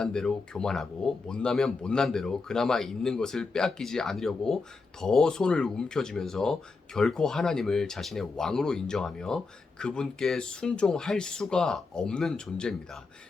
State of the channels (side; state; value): right; quieter; 4.1 dB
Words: 대로 교만하고 못나면 못난 대로 그나마 있는 것을 빼앗기지 않으려고 더 손을 움켜쥐면서 결코 하나님을 자신의 왕으로 인정하며 그분께 순종할 수가 없는 존재입니다.